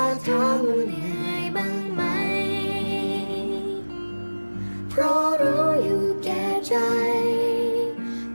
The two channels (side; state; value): both; inverted; correlation -1.00